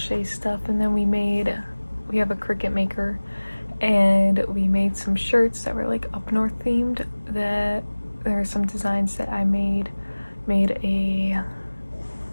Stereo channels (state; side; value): inverted; both; correlation -1.00